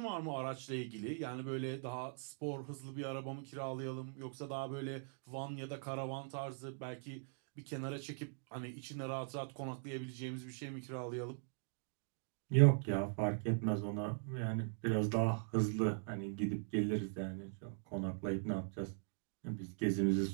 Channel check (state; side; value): silent; left; digital silence